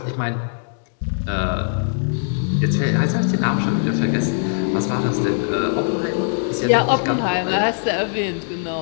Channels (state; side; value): silent; right; digital silence